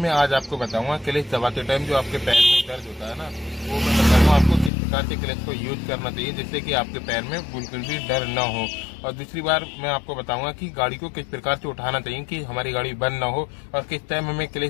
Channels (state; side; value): drops out; right; at 4.7 s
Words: आज आपको बताऊंगा क्लिच दबाते टाइम जो आपके पैर में दर्द होता है ना, वो मैं बताऊंगा आपको किस प्रकार से क्लिच को यूज करना चाहिए जिससे कि आपके पैर में बिल्कुल भी डर न हो। और दूसरी बार मैं आपको बताऊंगा कि गाड़ी को किस प्रकार से उठाना चाहिए कि हमारी गाड़ी बंद न हो, और किस टाइम हमें